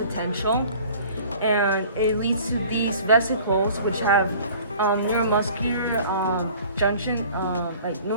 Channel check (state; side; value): inverted; both; correlation -0.47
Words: and it leads to these vesicles, which have neuromuscular junction, like